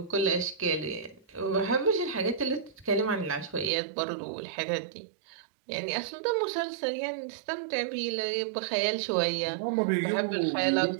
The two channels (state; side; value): drops out; left; at 3.7 s